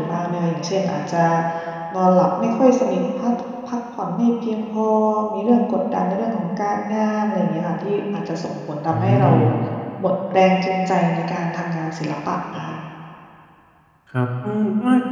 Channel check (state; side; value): identical; both; correlation 1.00